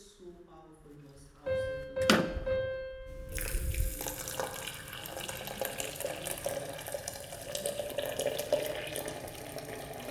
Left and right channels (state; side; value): identical; both; correlation 1.00